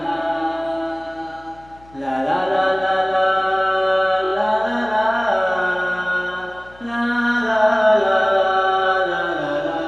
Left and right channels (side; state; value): left; noise; hum, 26 dB below the sound